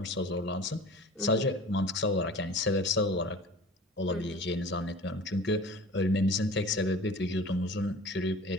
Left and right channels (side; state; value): both; normal; correlation 0.41